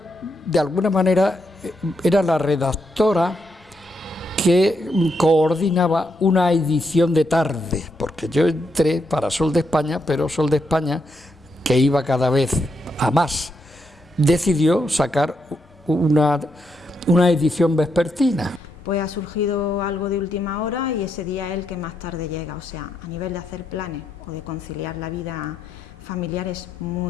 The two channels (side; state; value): both; normal; correlation 0.80